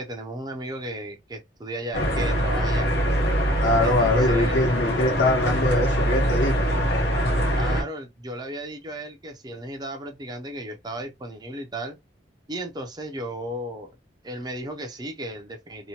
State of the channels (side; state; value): both; normal; correlation 0.52